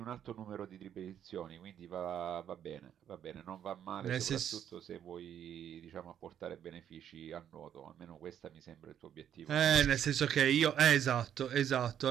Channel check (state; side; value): quieter; left; 9.7 dB